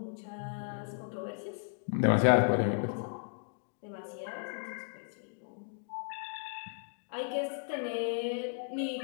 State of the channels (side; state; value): right; silent; digital silence